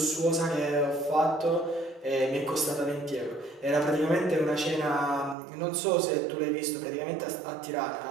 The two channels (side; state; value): left; drops out; at 5.4 s